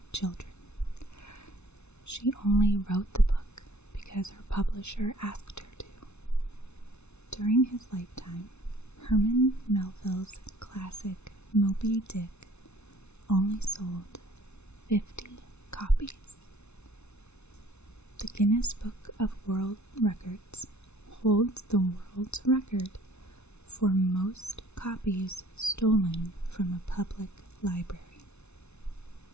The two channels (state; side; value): late; right; 0.81 ms